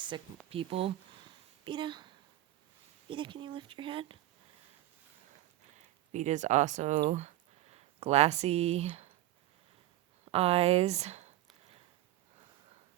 people. Vita, can you lift your head? Vita's also glassy eyes.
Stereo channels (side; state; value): left; quieter; 15.4 dB